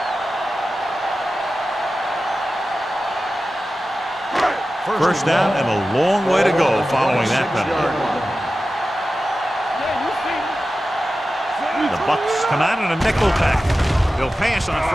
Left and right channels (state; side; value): normal; both; correlation 0.94